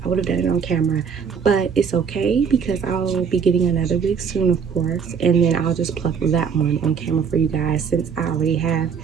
I would have done it on camera, but it's okay because I'll be getting another wig soon, of course, and then I'll just pluck that one on camera for you guys, since I already have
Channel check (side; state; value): left; quieter; 6.6 dB